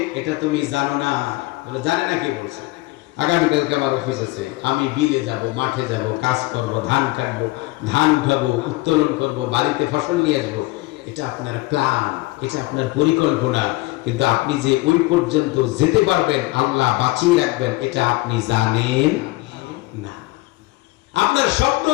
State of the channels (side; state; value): right; quieter; 21.2 dB